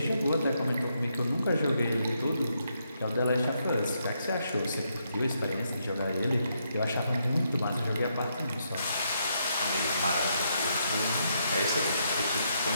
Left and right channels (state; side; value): inverted; both; correlation -0.78